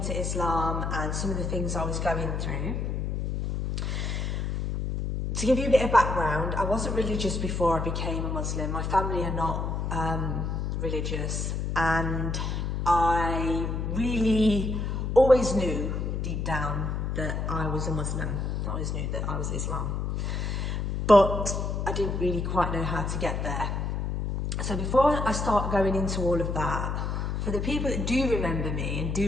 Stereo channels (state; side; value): noise; left; hum, 1 dB below the sound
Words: Islam and some of the things I was going through. To give you a bit of background, I wasn't religious before I became a Muslim. My family are not religious, and I really always knew deep down that I was a Muslim. I always knew that I was Islam, but I didn't really quite know how to get there. So before I start going into all of that, for the people that do remember me and